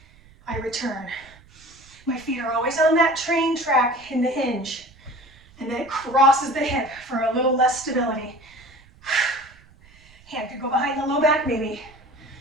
I return. My feet are always on that train track in the hinge, and then it crosses the hip for a little less stability. Hand could go behind the low back maybe.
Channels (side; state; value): right; noise; rumble, 26 dB below the sound